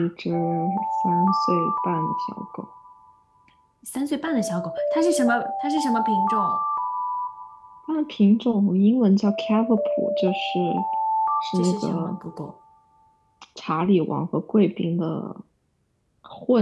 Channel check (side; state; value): both; identical; correlation 1.00